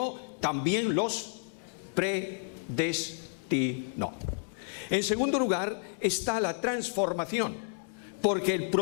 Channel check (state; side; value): silent; right; digital silence